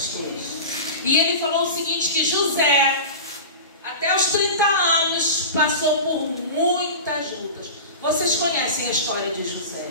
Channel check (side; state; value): both; inverted; correlation -0.31